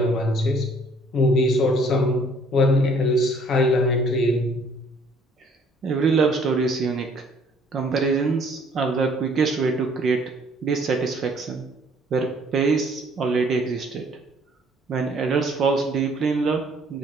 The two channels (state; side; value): normal; both; correlation 0.60